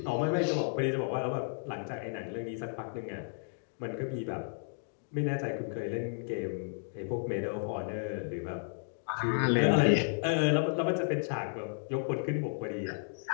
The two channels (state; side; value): silent; right; digital silence